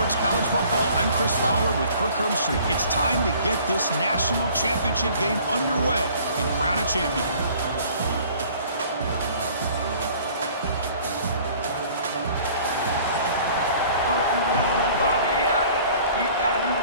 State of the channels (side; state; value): both; inverted; correlation -0.52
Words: College Football, I'm Chris Fowler with Kirk Herbstreit. It's time to get this national championship game underway and crown a champion.